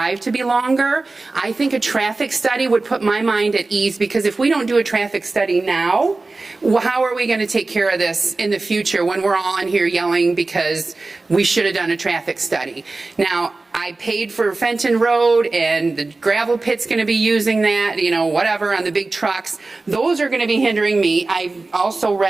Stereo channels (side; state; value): left; quieter; 3.4 dB